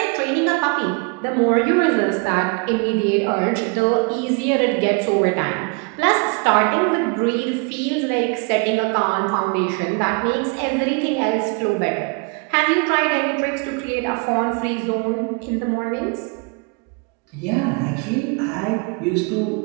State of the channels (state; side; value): quieter; left; 32.8 dB